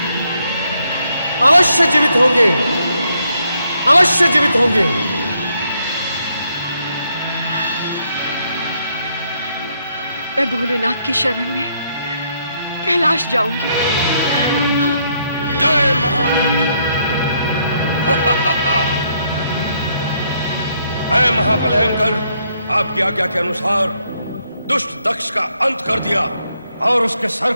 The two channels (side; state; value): both; inverted; correlation -0.74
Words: अवश्य जीवित होंगे। अवश्य जीवित होंगे। मैं भोलेनाथ की शरण में कैलाश जाऊंगी। जय महारुद्र। है महाबलयंकर, आपकी आज्ञा के अनुसार दुष्ट दक्ष का अंत कर दिया और उसके सर